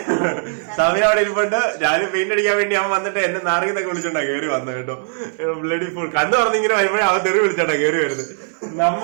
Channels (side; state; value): left; silent; digital silence